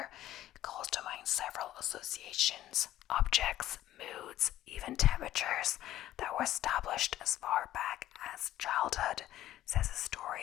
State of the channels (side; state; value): right; quieter; 13.6 dB